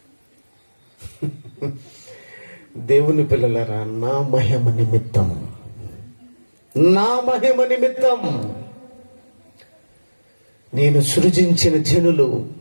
దేవుని పిల్లలరా, నా మహిమ నిమిత్తం నేను సృజించిన జనులు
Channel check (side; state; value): both; inverted; correlation -1.00